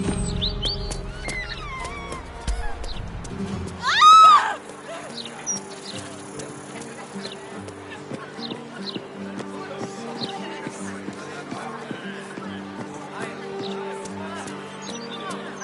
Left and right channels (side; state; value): both; identical; correlation 1.00